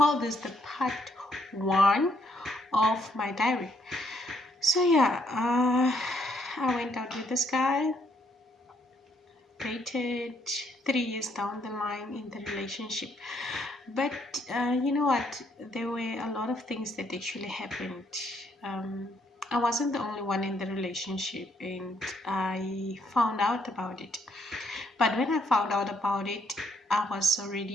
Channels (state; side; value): normal; both; correlation 0.71